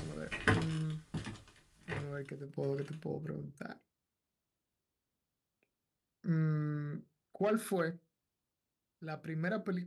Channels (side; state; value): both; identical; correlation 1.00